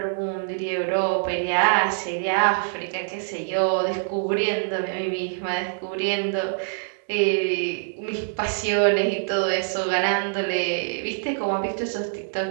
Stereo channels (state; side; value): silent; left; digital silence